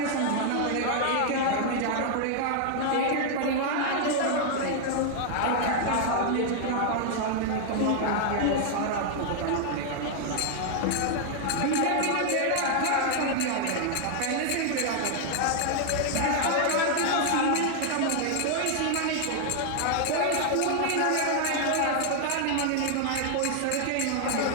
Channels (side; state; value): both; different; correlation 0.00